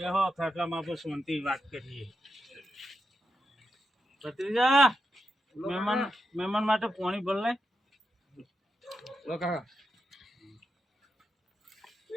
ખાટલામાં આપણે શાંતિ વાત કરીએ. ભત્રીજા, મહેમાન માટે પાણી ભર લે.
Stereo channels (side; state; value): both; normal; correlation 0.86